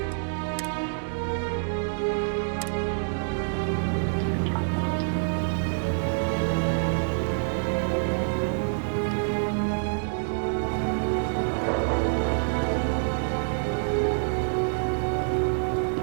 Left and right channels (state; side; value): silent; left; digital silence